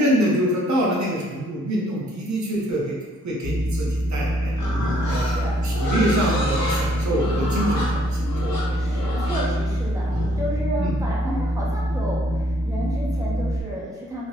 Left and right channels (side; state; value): both; normal; correlation 0.66